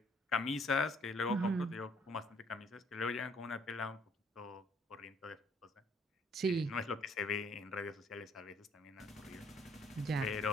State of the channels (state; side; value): normal; both; correlation 0.63